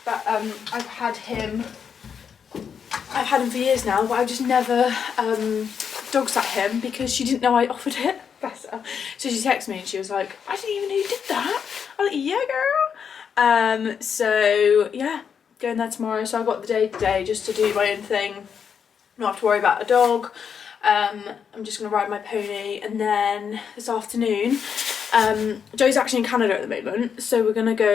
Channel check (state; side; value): quieter; right; 7.1 dB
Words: but I've had him for years now, but I've just never dog sat him because she didn't know I offered it. Bless her. So she texted me and she was like, I didn't even know you did that. I was like, yeah, girl. So yeah, going there tomorrow. So I've got the day today just to do my own thing, not have to worry about a dog. I'm just going to ride my pony, and then this afternoon, Joe's actually in Canada at the moment, so we're going to